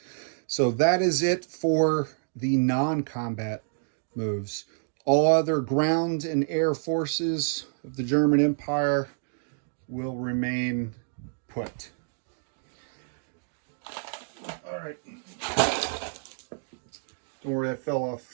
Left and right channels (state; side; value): silent; left; digital silence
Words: So that is it for the non-combat moves. All other ground and air forces of the German Empire will remain put. All right. Don't worry, that fell